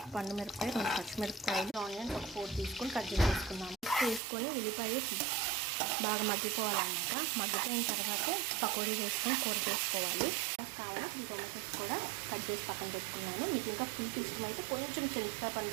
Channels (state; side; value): drops out; left; at 4.2 s